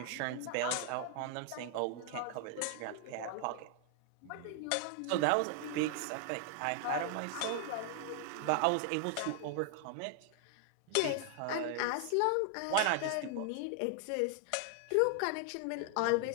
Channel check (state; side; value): different; both; correlation 0.00